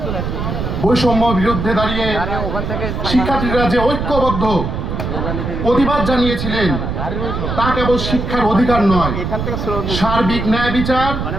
বৈষম্য বিরুদ্ধে দাঁড়িয়ে শিক্ষার্থীরা যে ঐক্যবদ্ধ প্রতিবাদ জানিয়েছিলেন তা কেবল শিক্ষার অধিকার নয়, সার্বিক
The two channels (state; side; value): noise; right; rumble, 3 dB below the sound